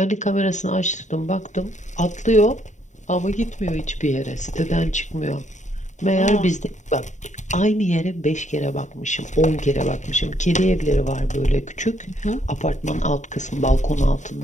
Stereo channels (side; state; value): right; late; 0.35 ms